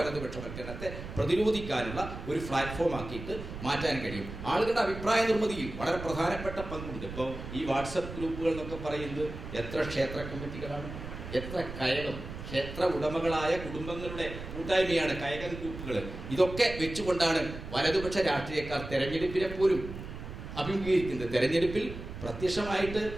പ്രതിരോധിക്കാനുള്ള ഒരു പ്ലാറ്റ്ഫോം ആക്കിയിട്ട് മാറ്റാൻ കഴിയും. ആളുകളുടെ അഭിപ്രായ നിർമ്മിതിയിൽ വളരെ പ്രധാനപ്പെട്ട പങ്കുണ്ട്. ഇപ്പോൾ ഈ വാട്സപ്പ് ഗ്രൂപ്പുകൾ എന്നൊക്കെ പറയുന്നത് എത്ര ക്ഷേത്ര കമ്മിറ്റികളാണ്, എത്ര കയകം, ക്ഷേത്ര ഉടമകളായ കുടുംബങ്ങളുടെ കൂട്ടായ്മയാണ് കയകം ഗ്രൂപ്പുകൾ. ഇതൊക്കെ വെച്ചുകൊണ്ടാണ് വലതുപക്ഷ രാഷ്ട്രീയക്കാർ തെരഞ്ഞെടുപ്പിനെ പോലും അഭിമുഖീകരിക്കുന്നത്. തെരഞ്ഞെടുപ്പിൽ പ്രത്യക്ഷമായിട്ട്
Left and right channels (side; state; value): right; noise; rumble, 10 dB below the sound